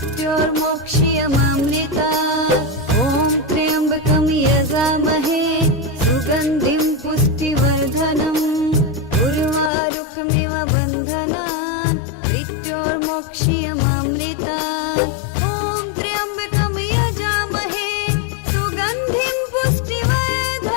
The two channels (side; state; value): right; drops out; at 9.7 s